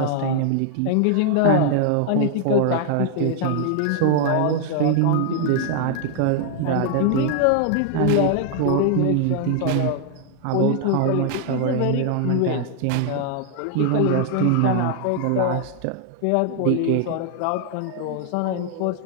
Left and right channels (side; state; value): both; different; correlation 0.00